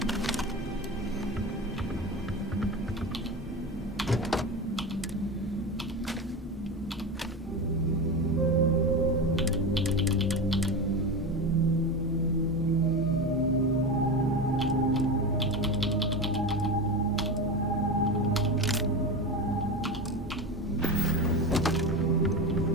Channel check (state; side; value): normal; both; correlation 0.22